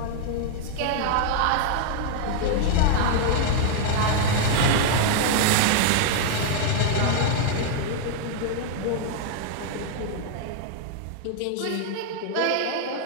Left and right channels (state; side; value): different; both; correlation 0.00